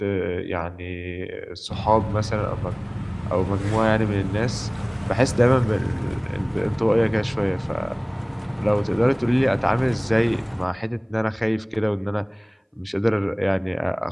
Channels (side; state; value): both; identical; correlation 1.00